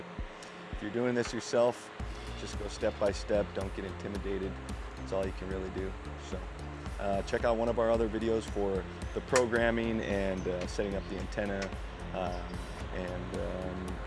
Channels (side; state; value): both; identical; correlation 1.00